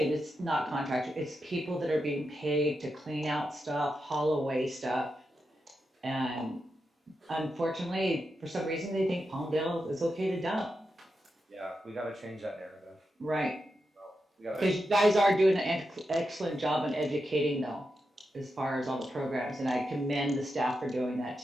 it's not contractors, it's people that are being paid to clean out stuff, haul away stuff. And unfortunately, for some reason, they think Palmdale is okay to dump. Yeah, we got to change that narrative. Right. We got Because you guys are doing an excellent job in educating though, as far as all the programs, and I commend the staff for doing that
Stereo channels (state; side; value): normal; both; correlation 0.88